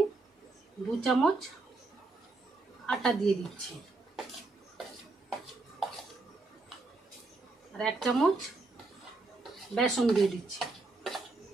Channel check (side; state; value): left; quieter; 3.4 dB